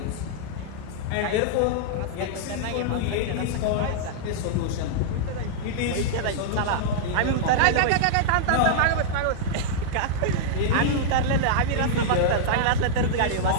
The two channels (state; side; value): different; both; correlation -0.02